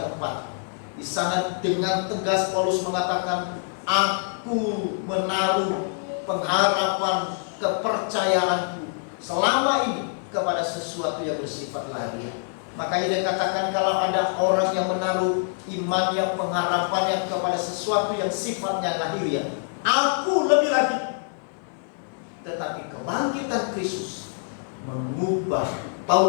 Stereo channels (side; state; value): right; silent; 57 dB below the other